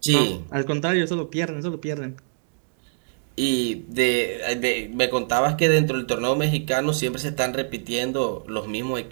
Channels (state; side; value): silent; left; 63 dB below the other